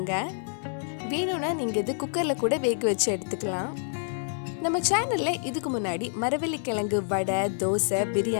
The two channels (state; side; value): silent; right; digital silence